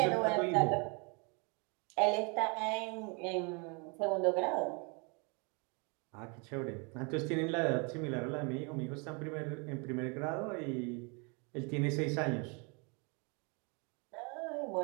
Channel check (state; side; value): quieter; left; 32.9 dB